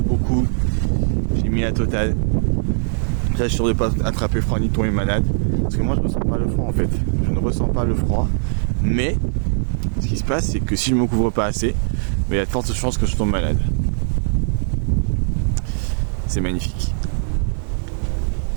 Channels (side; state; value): left; silent; 58 dB below the other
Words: J'ai mis la totale. Là, je suis sûr de ne pas attraper froid ni tomber malade. Parce que moi, je ne ressens pas le froid, en fait. Je ne ressens pas le froid. Mais, ce qui se passe, c'est que si je ne me couvre pas assez, il y a de fortes chances que je tombe malade. C'est magnifique.